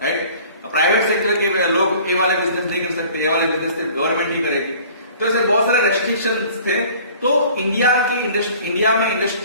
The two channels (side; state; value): both; inverted; correlation -0.50